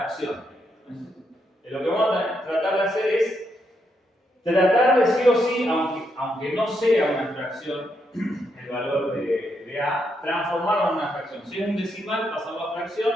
Lo que vamos a tratar de hacer es tratar de sí o sí, aunque no sea una fracción, el valor de A, transformarlo en una fracción. Si es un decimal, pasarlo a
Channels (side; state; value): both; normal; correlation 0.79